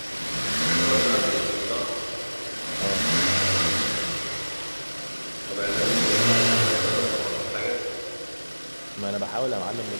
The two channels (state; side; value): inverted; both; correlation -1.00